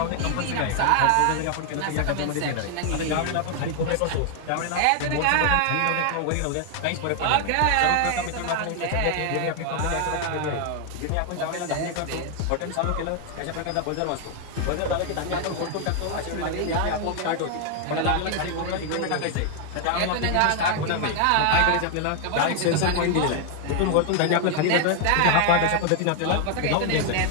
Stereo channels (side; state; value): both; different; correlation 0.00